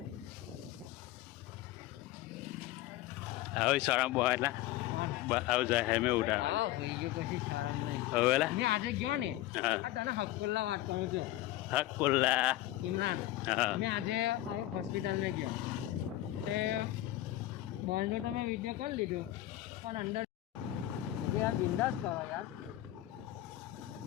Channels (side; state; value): right; quieter; 15.3 dB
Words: હવે શરમ બોલા આવ જાય હે મે ઉડા આ હોઈ ગયો કશી શરમ નહીં હવેલા મે આજે ગયો ને આ તને હકુલ્લા વાત કરું છું। હકુલ્લા ઇમરાન મે આજે હોસ્પિટલ મે ગયો તે બોલનો તમે વિડિયો કરી લીધો પણ અંદર જે આ બિંદાસ કરો યાર